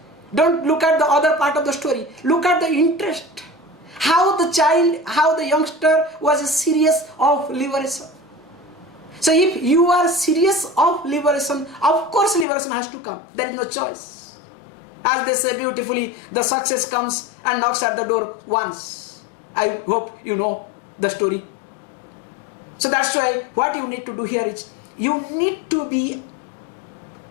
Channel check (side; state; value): right; drops out; at 12.5 s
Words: Don't look at the other part of the story. Look at the interest. How the child, how the youngster was serious of liberation. So if you are serious of liberation, of course liberation has to come. There is no choice. As they say beautifully, the success comes and knocks at the door once. I hope you know the story. So that's why what you need to do here is, you need to be